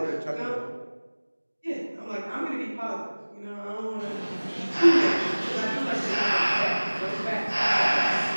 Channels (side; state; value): both; inverted; correlation -1.00